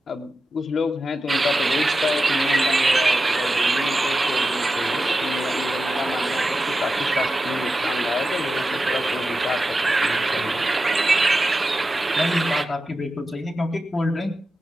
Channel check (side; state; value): both; normal; correlation 0.91